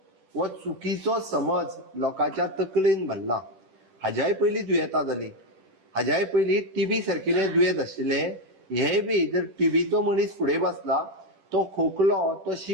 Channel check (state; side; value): late; left; 10 ms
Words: हो चुकीचो समज लोकांच्या तकलेन भरला. हाज्याय पयलीं दुयेंतां जाली, हाज्याय पयलीं टीबी सारकिले दुयेंत आशिल्ले. हे बी जर टीबीचो मनीस फुडें बसला, तो खोकलो, तो